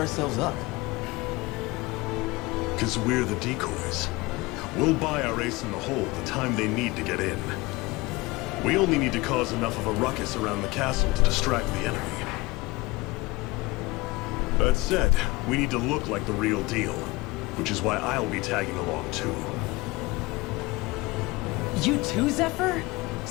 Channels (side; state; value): right; quieter; 22.1 dB